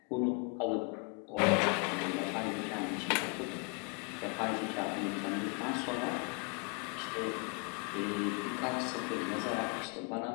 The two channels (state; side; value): quieter; right; 34.6 dB